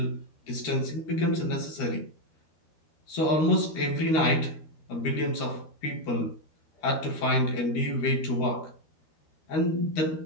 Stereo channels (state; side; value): late; right; 13 ms